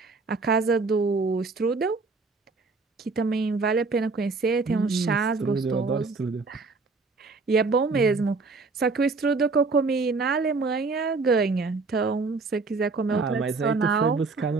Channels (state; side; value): quieter; left; 4.0 dB